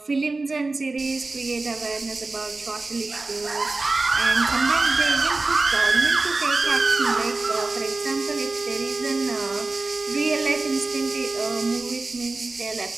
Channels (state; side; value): quieter; left; 3.4 dB